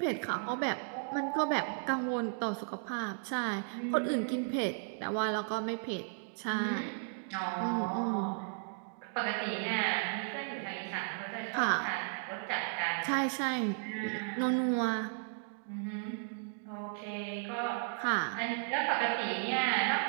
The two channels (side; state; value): left; silent; digital silence